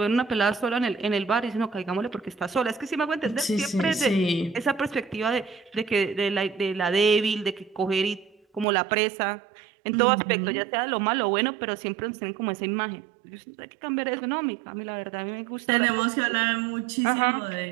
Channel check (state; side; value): drops out; left; at 8.7 s